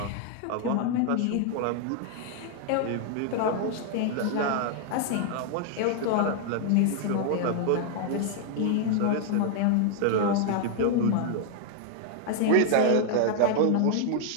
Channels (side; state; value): both; different; correlation 0.00